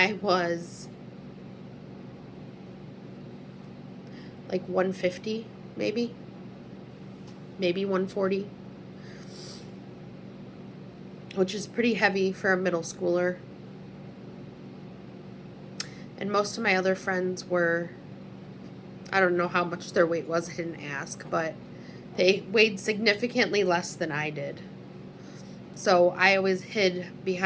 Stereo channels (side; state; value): both; identical; correlation 1.00